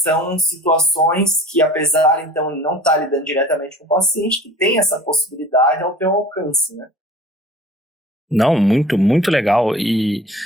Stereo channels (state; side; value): normal; both; correlation 0.44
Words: situações que, apesar, então, de não estar lidando diretamente com o paciente, que tem essa possibilidade ao teu alcance, né? Não, muito, muito legal. E